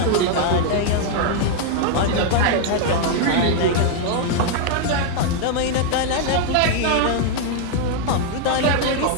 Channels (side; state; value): both; different; correlation 0.00